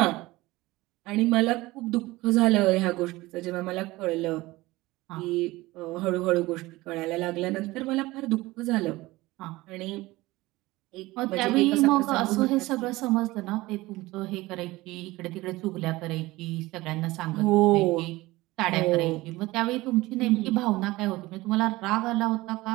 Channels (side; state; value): left; quieter; 19.5 dB